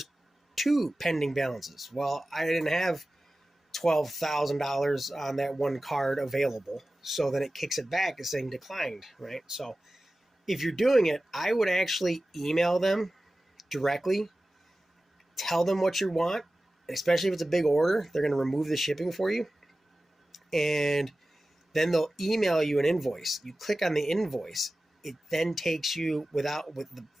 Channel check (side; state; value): both; normal; correlation 0.96